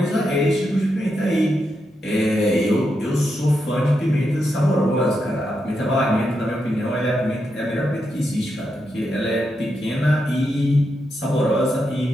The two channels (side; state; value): both; normal; correlation 0.84